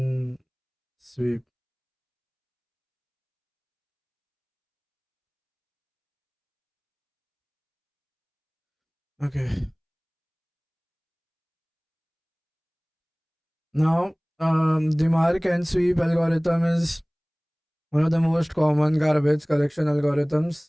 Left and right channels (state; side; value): identical; both; correlation 1.00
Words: sweep. Okay. Now the mark and sweep algorithm is one of the most common garbage collection